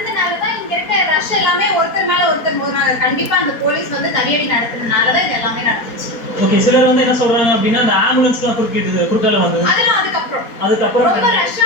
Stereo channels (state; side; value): late; right; 4.3 ms